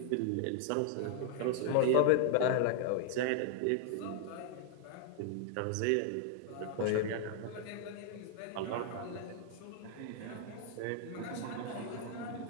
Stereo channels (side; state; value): both; different; correlation -0.01